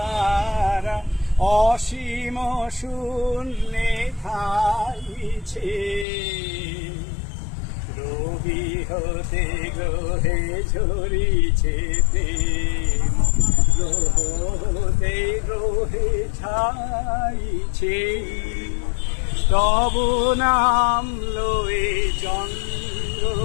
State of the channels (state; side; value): drops out; right; at 6.1 s